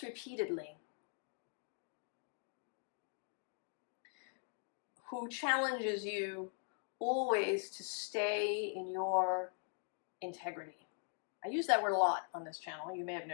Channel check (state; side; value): silent; right; 50 dB below the other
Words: repeatedly, who challenges you always to stay in your integrity. I use that word a lot on this channel, you may have